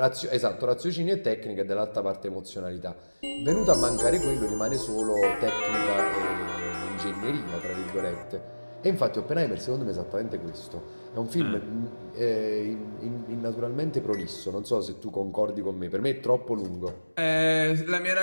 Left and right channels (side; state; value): both; inverted; correlation -1.00